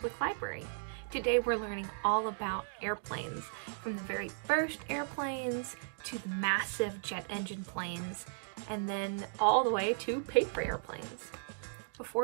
Library. Today we're learning all about airplanes, from the very first airplanes to the massive jet engine planes, and then all the way to paper airplanes.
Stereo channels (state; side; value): silent; left; digital silence